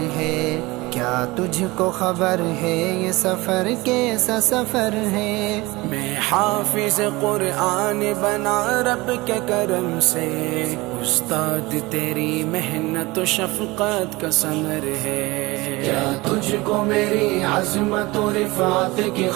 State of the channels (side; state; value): left; quieter; 22.0 dB